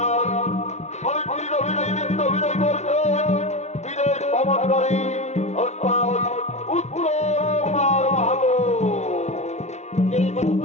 সাবিত্রীর অভিনয় নৃত্য অভিনয় করছে বিদেশ ভ্রমণকারী উত্তর কুমার মাহাতো।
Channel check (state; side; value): late; right; 0.32 ms